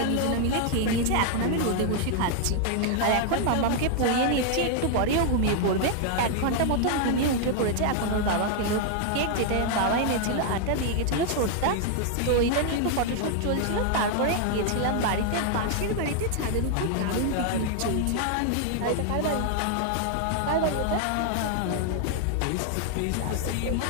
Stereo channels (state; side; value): different; both; correlation 0.00